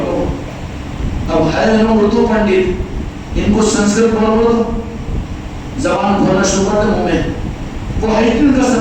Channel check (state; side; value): identical; both; correlation 1.00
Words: اب ہے انہوں اردو پنڈت، ان کو سنسکرت بولو تو زبان کھولنا شروع کرتے منہ میں، وہ ہے ان کا